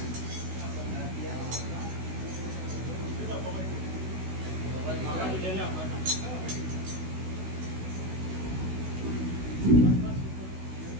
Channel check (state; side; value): late; left; 16 ms